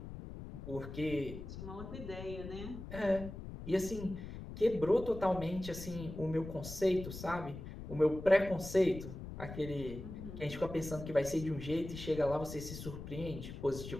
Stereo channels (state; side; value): noise; left; rumble, 10 dB below the sound